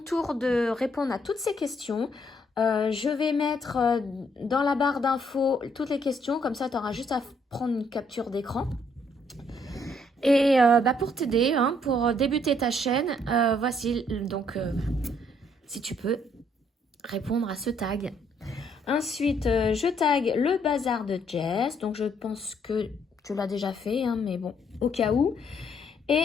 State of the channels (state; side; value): normal; both; correlation 0.69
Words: de répondre à toutes ces questions. Je vais mettre dans la barre d'infos toutes les questions, comme ça tu auras juste à prendre une capture d'écran. Et pour t'aider, hein, pour débuter ta chaîne, voici donc si tu peux répondre à ce tag. Ensuite, je tag le bazar de Jess, donc je pense que tu l'as déjà fait, hein, mais bon, au cas où.